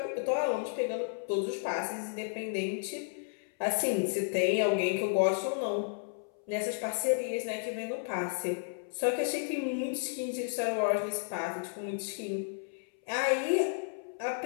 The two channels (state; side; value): silent; right; 56 dB below the other